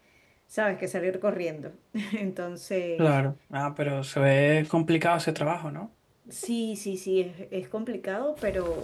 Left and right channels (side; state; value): both; identical; correlation 1.00